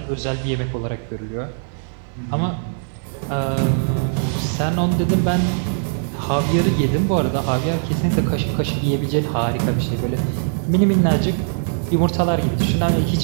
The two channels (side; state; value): left; silent; 64 dB below the other